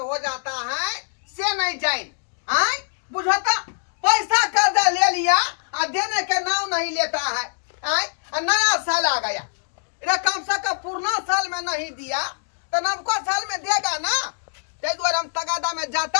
हो जाता है से नहीं जाए बुझता। पैसा कर्जा ले लिया और देने के नाम नहीं लेता है। नया साल आ गया, कम से कम पुराना साल में नहीं दिया तो नवका साल में देगा ना। ते द्वारा हम तगादा में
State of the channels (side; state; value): right; silent; digital silence